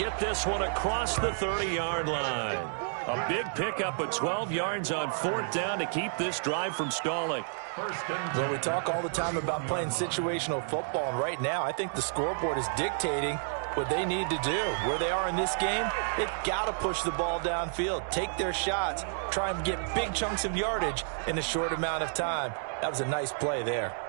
get this one across the 30-yard line. A big pickup of 12 yards on 4th down to keep this drive from stalling. Well, we talk all the time about playing situational football, and right now I think the scoreboard is dictating what they need to do. Where they are in this game, they've got to push the ball downfield, take their shots, try and get big chunks of yardage in a short amount of time. That was a nice play there.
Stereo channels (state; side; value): silent; left; digital silence